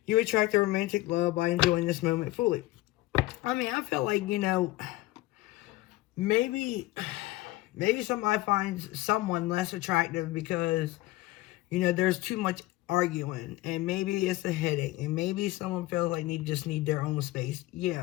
You attract a romantic love by enjoying this moment fully. I mean, I feel like, you know, maybe somebody finds someone less attractive because, you know, there's too much arguing. And maybe it's a headache. And maybe someone feels like they just need their own space.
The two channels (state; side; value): quieter; right; 18.2 dB